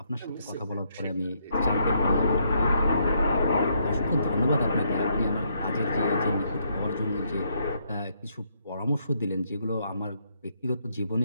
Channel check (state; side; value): inverted; both; correlation -0.74